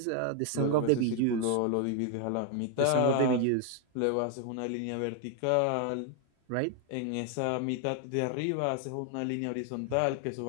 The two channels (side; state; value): both; different; correlation 0.01